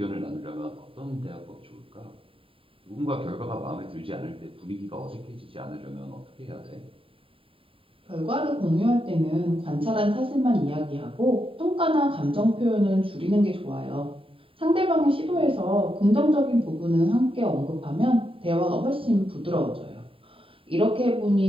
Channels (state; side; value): late; left; 0.26 ms